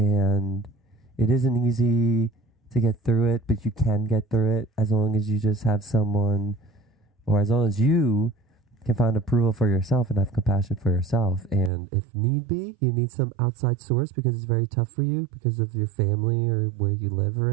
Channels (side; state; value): left; drops out; at 11.7 s